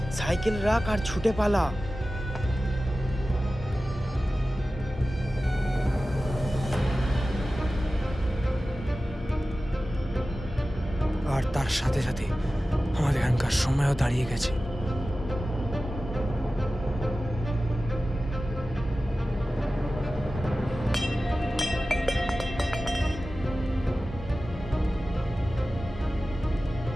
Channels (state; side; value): normal; both; correlation 0.95